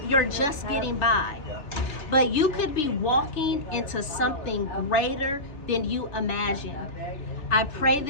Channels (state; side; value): late; right; 3.3 ms